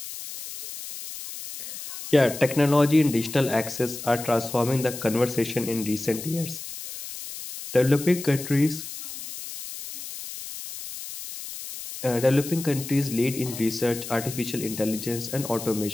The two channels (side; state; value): left; noise; hiss, 10 dB below the sound